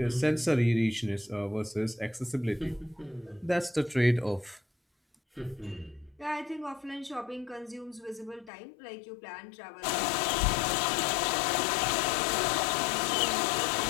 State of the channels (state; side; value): drops out; right; at 8.5 s